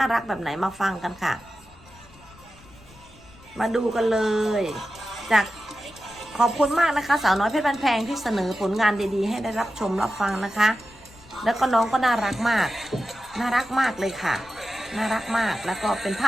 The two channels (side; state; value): left; noise; rumble, 24 dB below the sound